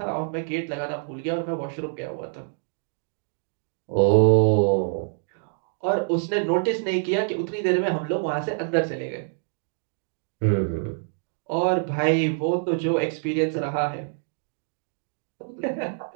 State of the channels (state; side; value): silent; left; digital silence